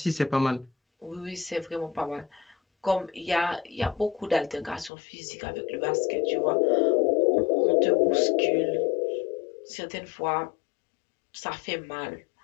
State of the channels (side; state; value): right; drops out; at 4.9 s